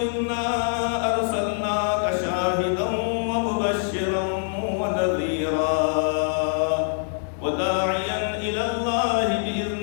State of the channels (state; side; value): silent; right; digital silence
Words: إنا أرسلناك شاهدا ومبشرا ونذيرا وداعيا إلى الله